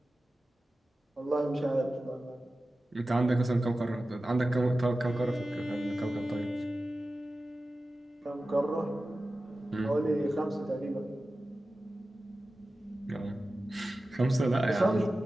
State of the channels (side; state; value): both; normal; correlation 0.95